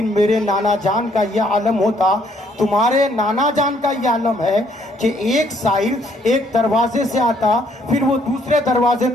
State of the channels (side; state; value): both; normal; correlation 0.67